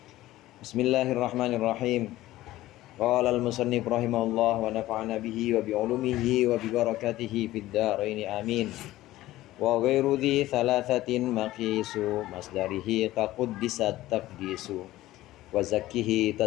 Bismillahirrahmanirrahim. Qala al-musannif rahimahullah wa nafa'ana bihi wa bi'ulumihi wa bi barakatihi fid dharain amin. Wa ghairu dhi thalathatin maqisu masdarihi qaquddisat taqdisu wa zakkihi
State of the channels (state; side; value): quieter; right; 16.1 dB